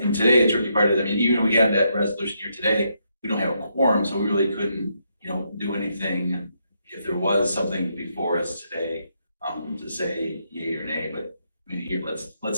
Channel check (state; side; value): inverted; both; correlation -0.78